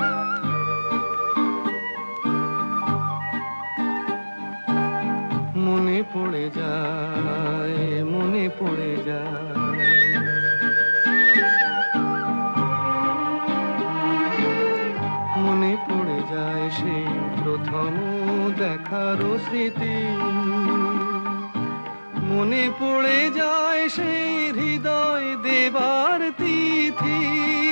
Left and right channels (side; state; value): both; inverted; correlation -1.00